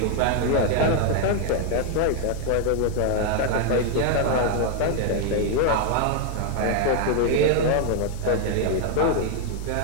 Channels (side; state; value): both; different; correlation 0.00